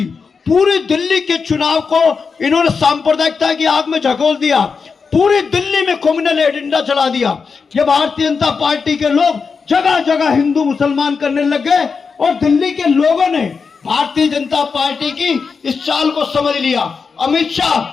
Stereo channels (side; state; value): right; quieter; 5.2 dB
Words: पूरी दिल्ली के चुनाव को इन्होंने सांप्रदायिकता की आग में झकोल दिया। पूरी दिल्ली में कम्युनल एजेंडा चला दिया। ये भारतीय जनता पार्टी के लोग जगह जगह हिंदू मुसलमान करने लग गए और दिल्ली के लोगों ने भारतीय जनता पार्टी की इस चाल को समझ लिया। अमित